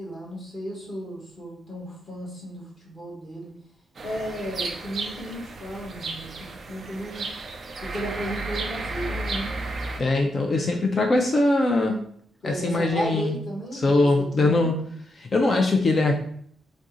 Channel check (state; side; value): normal; both; correlation 0.83